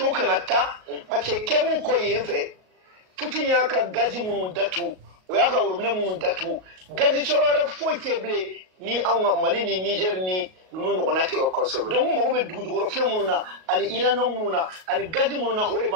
vous Canada, parce que quand vous avez fait, Poutine y a un gaz moun datu, ou y a un robinet moun datu, gaz sur le faux teblé, ni en Mali, ni Niger, ni nous on a tiré donc on m'a dit du reflet monuna ani irano monuna ani gaji monuna ore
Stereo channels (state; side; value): late; left; 38 ms